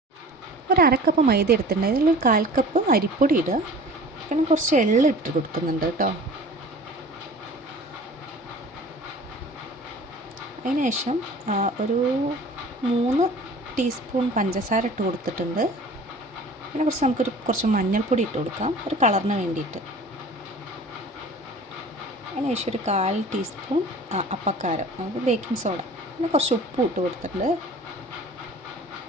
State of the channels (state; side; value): normal; both; correlation 0.43